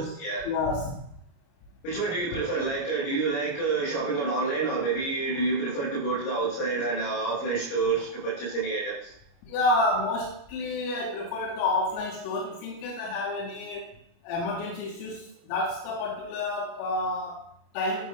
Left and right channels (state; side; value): late; right; 29 ms